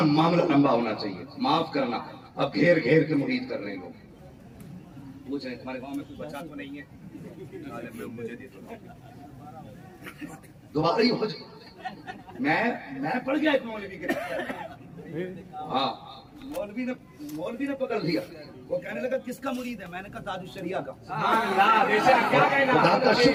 मामला लंबा होना चाहिए, माफ करना। अब घेर घेर के मुरीद कर रहे हैं लोग। पूछ रहे तुम्हारे गांव में कोई बच्चा तो नहीं है, मुझे दे दो। दोबारा ही हो जाए। मैं पढ़ गया एक मौलवी के, हाँ मौलवी ने पकड़ लिया। वो कहने लगा किसका मुरीद है? मैंने कहा ताजुश शरिया का। खुदा का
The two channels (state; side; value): identical; both; correlation 1.00